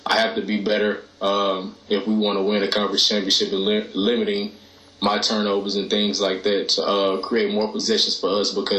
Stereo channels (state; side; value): identical; both; correlation 1.00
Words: I have to be better if we want to win a conference championship, and limiting my turnovers and things like that to create more possessions for us,